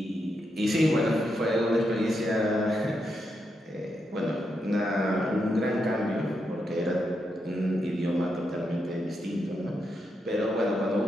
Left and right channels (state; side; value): normal; both; correlation 0.83